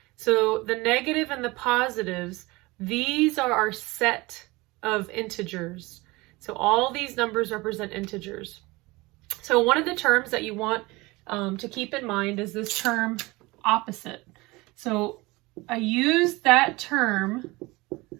So the negative and the positives, these are our set of integers. So all these numbers represent integers. So one of the terms that you want to keep in mind is this term opposite. So I used that term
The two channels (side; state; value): left; quieter; 22.6 dB